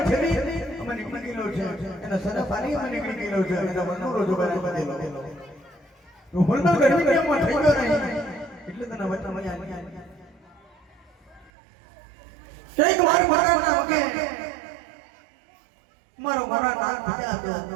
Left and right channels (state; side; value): drops out; left; at 11.5 s